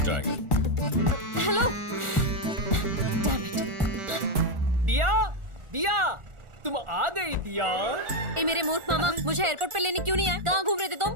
जाएगा। Hello, damn it. दिया, दिया, तुम आ गई दिया। ए मेरे मूर्ख मामा, मुझे एयरपोर्ट पे लेने क्यों नहीं आए? कहाँ घूम रहे थे तुम?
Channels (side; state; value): left; late; 1.4 ms